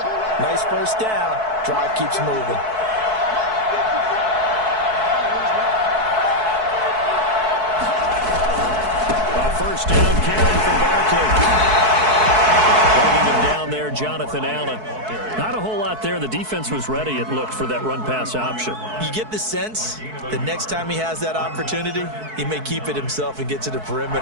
nice first down. Drive keeps moving. First down carry for Barkley. Bringing him down there, Jonathan Allen. Not a whole lot there. The defense was ready, it looked, for that run-pass option. You get the sense that next time he has that opportunity, he may keep it himself and get to the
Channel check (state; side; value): late; left; 4.6 ms